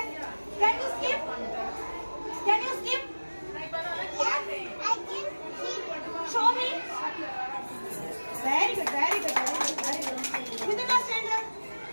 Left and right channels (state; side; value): inverted; both; correlation -1.00